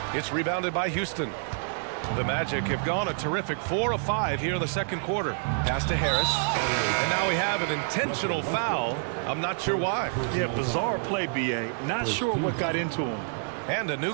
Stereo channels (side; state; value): left; silent; digital silence